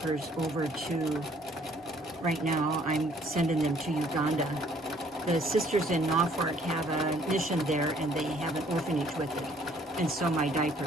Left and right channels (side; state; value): both; normal; correlation 0.61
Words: over to, right now I'm sending them to Uganda. The sisters in Norfolk have a mission there, and they have an orphanage with it. And so my